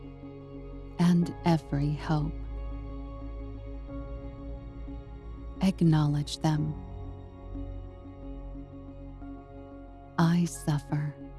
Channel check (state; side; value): identical; both; correlation 1.00